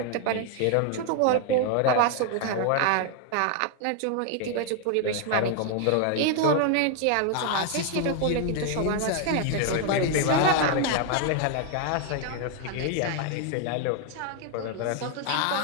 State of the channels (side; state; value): both; different; correlation 0.00